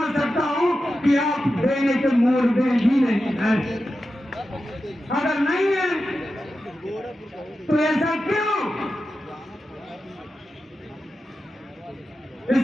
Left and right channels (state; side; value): normal; both; correlation 0.91